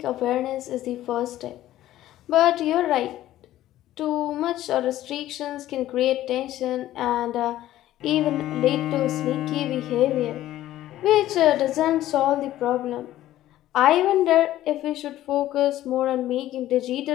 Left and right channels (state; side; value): quieter; right; 14.0 dB